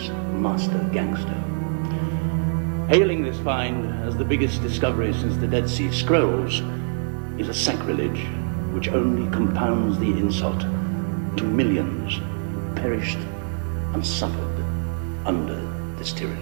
master gangster. Hailing this find as the biggest discovery since the Dead Sea Scrolls is a sacrilege which only compounds the insult to millions who perished and suffered under this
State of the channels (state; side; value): silent; left; 63 dB below the other